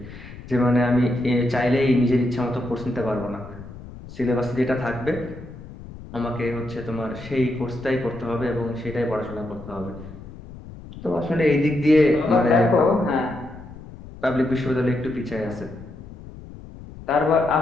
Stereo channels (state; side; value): noise; left; rumble, 15 dB below the sound